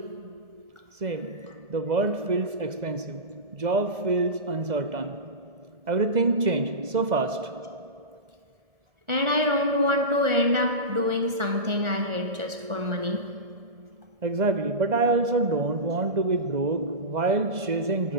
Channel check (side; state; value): left; late; 1.4 ms